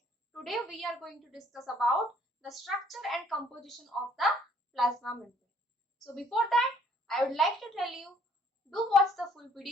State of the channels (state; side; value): normal; both; correlation 0.61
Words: today we are going to discuss about the structure and composition of the plasma membrane. So before that, I would like to tell you, do watch the full